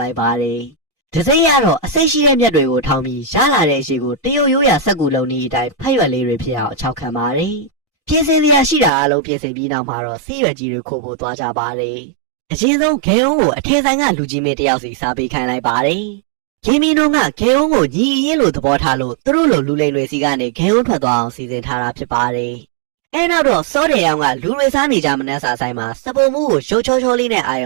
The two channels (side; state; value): left; drops out; at 8.9 s